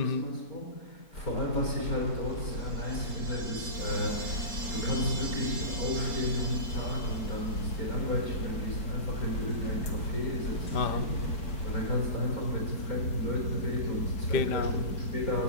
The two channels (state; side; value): late; right; 4.6 ms